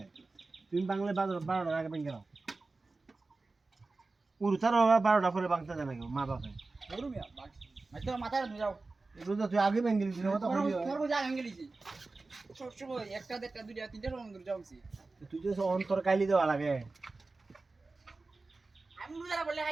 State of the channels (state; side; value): quieter; left; 3.6 dB